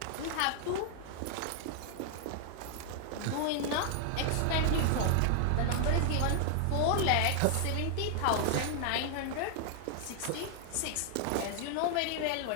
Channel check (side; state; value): both; different; correlation 0.00